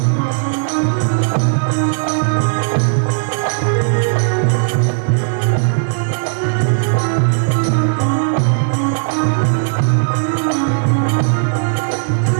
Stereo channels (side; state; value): left; silent; digital silence